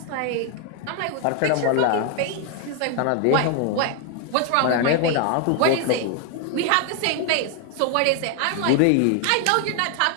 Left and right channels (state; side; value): different; both; correlation 0.00